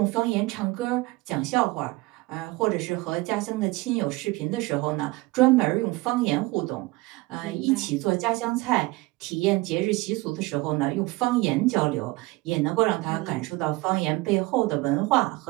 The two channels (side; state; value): left; quieter; 22.1 dB